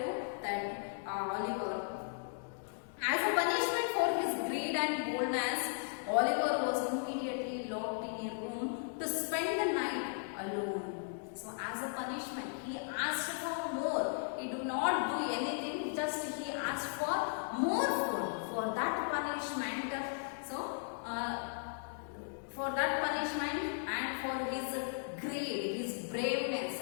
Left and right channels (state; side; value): silent; right; digital silence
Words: that Oliver. As a punishment for his greed and boldness, Oliver was immediately locked in a room to spend the night alone. So as a punishment, he asked for more. He did not do anything, just he asked for more food. For that punishment, and for his greed, his braveness